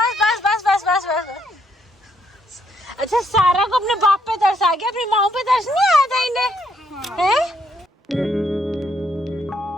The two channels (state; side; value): normal; both; correlation 0.73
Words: बस बस बस बस बस। अच्छा, सारा को अपने बाप पे तरस आ गया, अपनी माँ पे तरस नहीं आया था इन्हें, हैं?